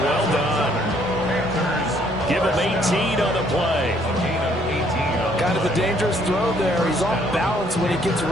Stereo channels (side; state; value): both; normal; correlation 0.65